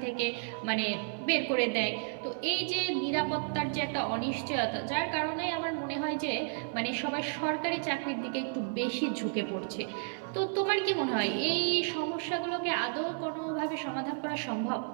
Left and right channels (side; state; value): left; silent; digital silence